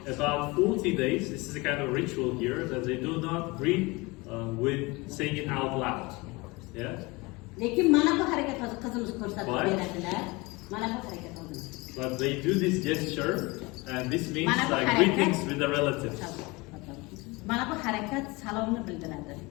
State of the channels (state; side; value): quieter; right; 24.5 dB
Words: about 40 days. This is a kind of ritual here that they do not greet with saying it out loud. Yeah. Lekin mana bu harakat hozir qizimiz ko'rsatib Why? beradilar. Mana bu harakat hozir. But they do this gesture, and this means Mana bu like harakat- greetings with the relatives. Mana bu harakat salomni bildiradi.